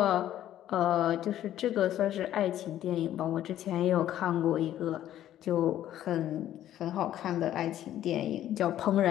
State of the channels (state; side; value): quieter; right; 12.2 dB